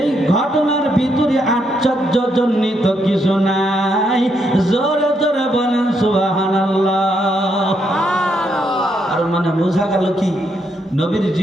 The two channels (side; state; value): both; normal; correlation 0.77